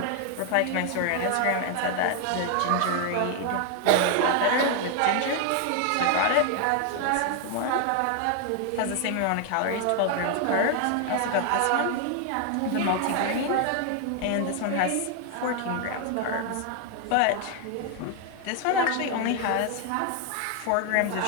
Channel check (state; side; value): different; both; correlation 0.00